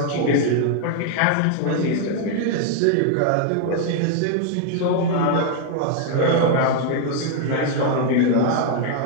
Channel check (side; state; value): both; different; correlation 0.00